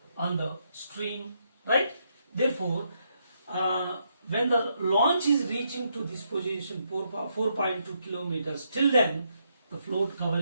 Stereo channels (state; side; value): inverted; both; correlation -0.78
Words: on the stream, right? Therefore, when the launch is reaching to this position, 4.2 kilometers, till then the float